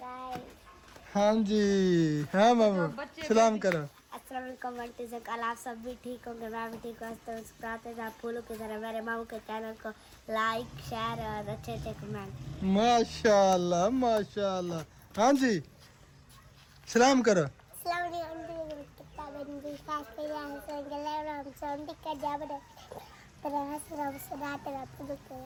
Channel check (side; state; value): both; identical; correlation 1.00